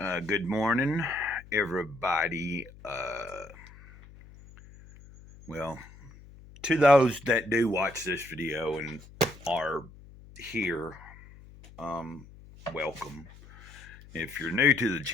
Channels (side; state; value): left; noise; hum, 20 dB below the sound